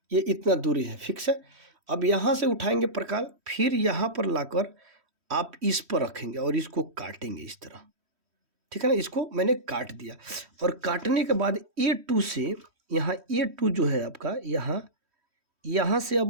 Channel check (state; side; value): late; left; 3.1 ms